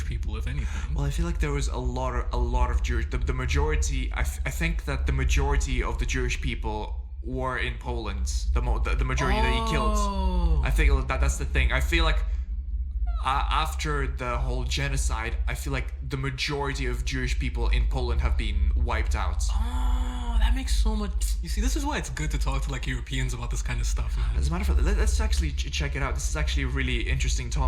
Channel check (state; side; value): identical; both; correlation 1.00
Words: people, if anything. Well, I feel like there was a lot of Jewish. The majority. I think that the majority of the Jewish people were in Poland. The majority that he killed. I think that's the thing. I feel like after the whole genocide, I feel like the majority of Jewish people in Poland have been wiped out. Oh, that makes so much. You see, this is why it's good to talk to like Europeans about this kind of stuff, man. As a matter of fact, let's actually check it out. This is actually a really interesting